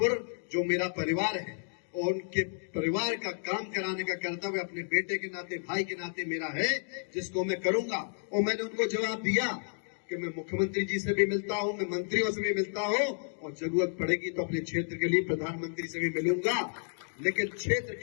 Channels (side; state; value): right; silent; digital silence